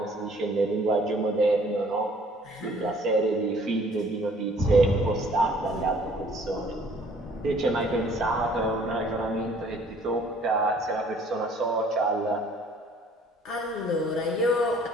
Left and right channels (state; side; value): normal; both; correlation 0.57